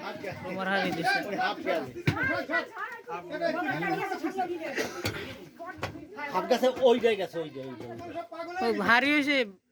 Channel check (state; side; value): identical; both; correlation 1.00